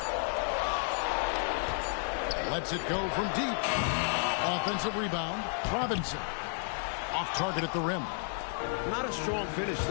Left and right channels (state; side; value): silent; right; 56 dB below the other